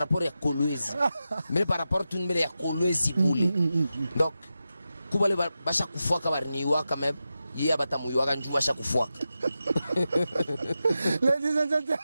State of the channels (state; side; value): inverted; both; correlation -0.91